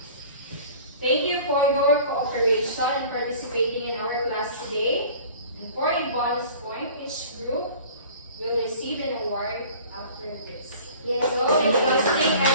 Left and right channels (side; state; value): both; inverted; correlation -0.45